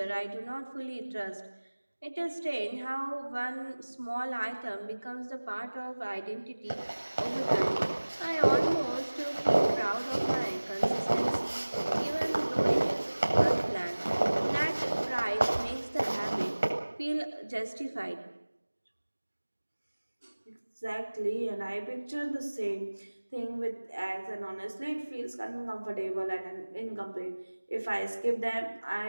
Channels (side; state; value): both; inverted; correlation -1.00